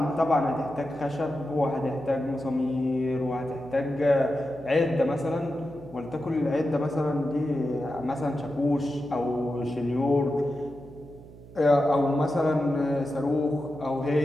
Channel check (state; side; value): noise; right; hum, 19 dB below the sound